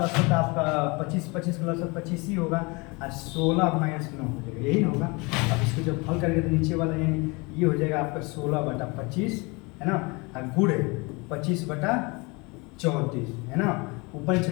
तो आपका 25 का लौसा 25 ही होगा, और 16 माइनस 9 हो जाएगा, यही ना होगा। अब इसको जब हल करेंगे तो नीचे वाला यानी ये हो जाएगा आपका 16/25, है ना, और गुड़े 25/34, है ना, ऊपर नीचे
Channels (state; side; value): quieter; right; 27.4 dB